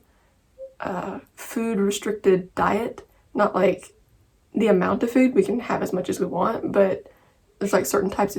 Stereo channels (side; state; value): both; identical; correlation 1.00